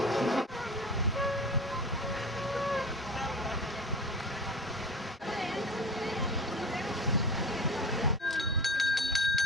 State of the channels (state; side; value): normal; both; correlation 0.33